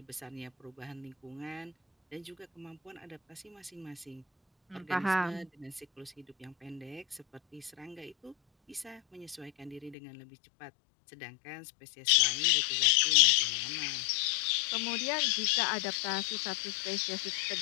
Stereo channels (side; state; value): right; drops out; at 10.0 s